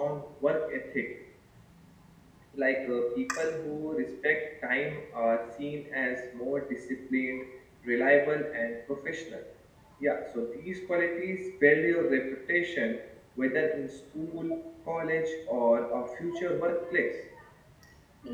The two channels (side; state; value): both; identical; correlation 1.00